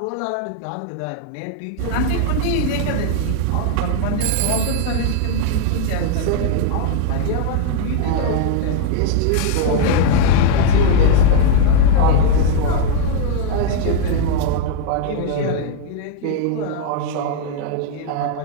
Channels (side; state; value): both; different; correlation 0.00